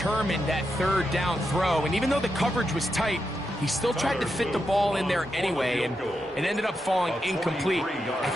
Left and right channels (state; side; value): normal; both; correlation 0.86